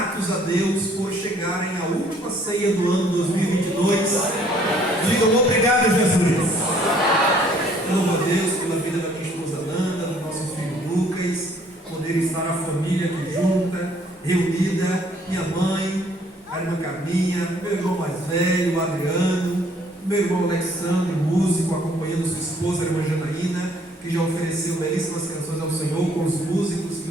a Deus por chegarem à última ceia do ano 2022? Digam obrigado, Jesus. Louvo a Deus pela vida da minha esposa Nanda, do nosso filho Lucas, poder estar a família aqui junta, reunida, minha mãe, a irmã Carminha, meu irmão mais velho, o Adriano, meu irmão Alexandre, músico, acompanhando sua esposa, a irmã Janaína, que já ofereceu belíssimas canções ao Senhor, com os músicos que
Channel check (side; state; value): both; normal; correlation 0.61